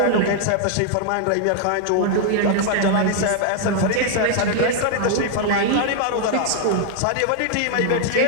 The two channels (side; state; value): both; different; correlation -0.01